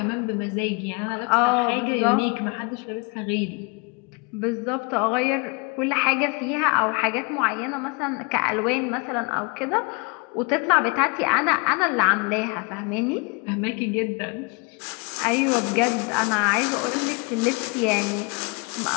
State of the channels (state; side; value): quieter; right; 31.3 dB